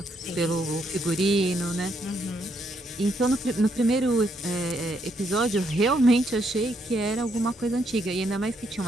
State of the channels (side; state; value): both; normal; correlation 0.75